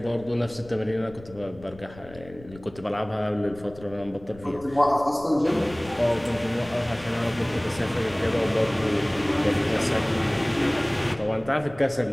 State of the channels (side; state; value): left; noise; rumble, 19 dB below the sound